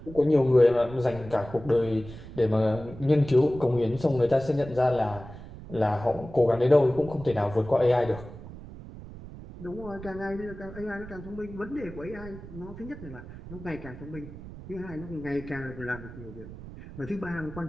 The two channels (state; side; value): noise; right; rumble, 14 dB below the sound